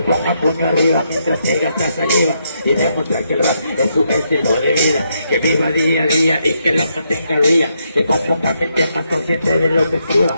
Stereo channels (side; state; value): both; inverted; correlation -0.78